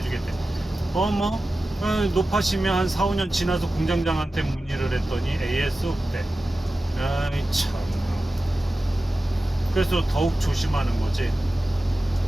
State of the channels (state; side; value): normal; both; correlation 0.94